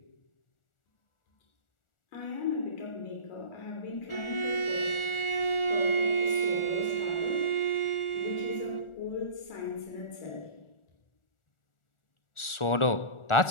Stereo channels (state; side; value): late; right; 1.4 ms